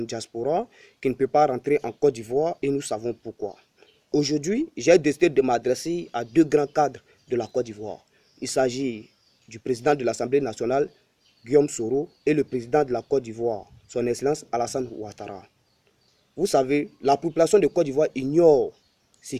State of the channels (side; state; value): both; identical; correlation 1.00